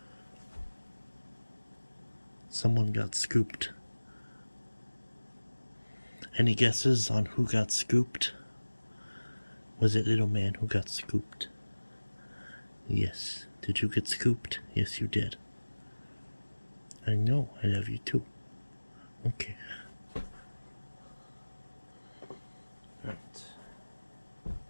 Someone got scooped. Any guesses on who got scooped? Was it little man who got scooped? Yes. Did you get scooped? Yes, you did. I know. I love you too. Okay. Right.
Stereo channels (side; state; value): both; inverted; correlation -1.00